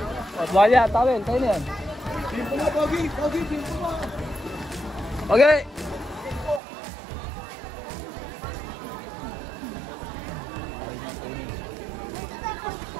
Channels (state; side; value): drops out; left; at 6.6 s